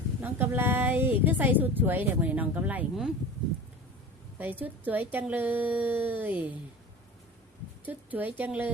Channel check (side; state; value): both; normal; correlation 0.36